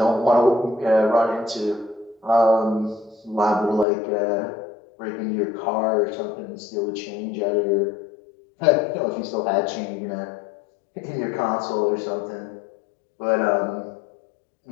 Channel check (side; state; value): right; drops out; at 3.9 s